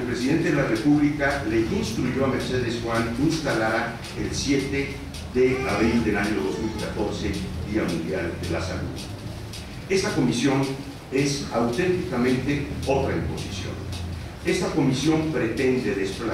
presidente de la República le instruyó a Mercedes Juan instalara el 7 de abril del año 2014, Día Mundial de la Salud. Esta comisión es auténticamente otra imposición. Esta comisión pretende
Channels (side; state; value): both; identical; correlation 1.00